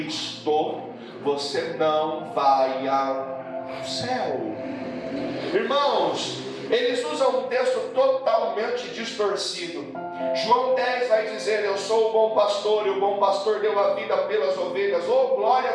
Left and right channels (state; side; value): identical; both; correlation 1.00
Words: você não vai ao céu. Irmãos, eles usam um texto totalmente distorcido. João 10 vai dizer: eu sou o bom pastor, e o bom pastor deu a vida pelas ovelhas. Oh, glória